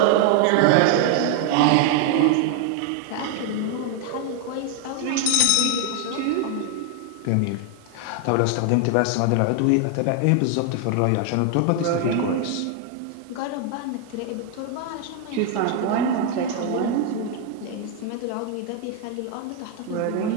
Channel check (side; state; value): both; different; correlation 0.00